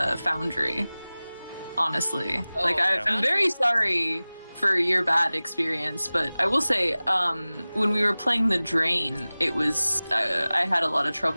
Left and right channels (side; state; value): both; inverted; correlation -0.98